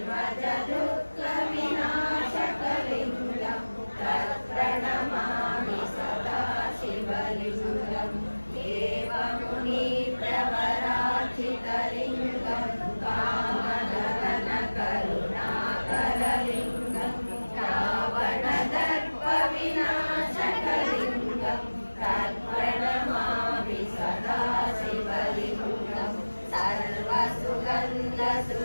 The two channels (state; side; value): inverted; both; correlation -1.00